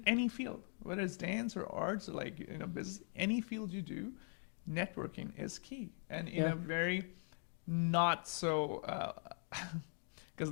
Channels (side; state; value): right; silent; 50 dB below the other